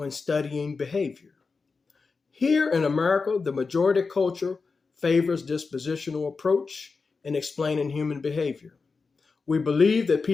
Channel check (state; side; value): quieter; right; 4.5 dB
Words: studying behavior. Here in America, the majority culture favors dispositional approach in explaining human behavior. We believe that